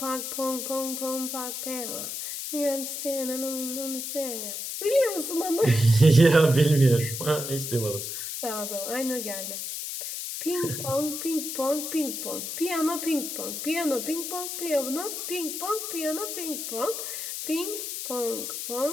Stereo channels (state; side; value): noise; left; hiss, 5 dB below the sound